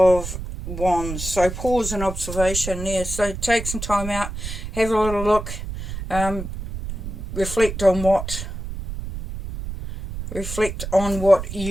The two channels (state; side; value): noise; right; rumble, 7 dB below the sound